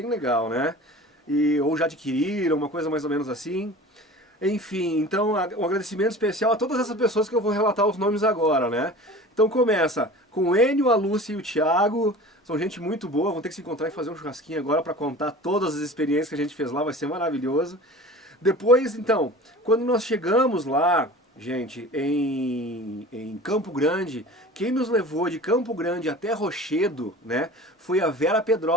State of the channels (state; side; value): normal; both; correlation 0.39